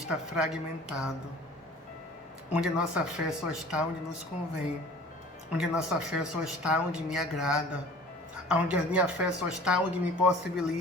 fragmentado, onde a nossa fé só está onde nos convém, onde a nossa fé só está onde me agrada, onde a minha fé só está onde me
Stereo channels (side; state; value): both; normal; correlation 0.46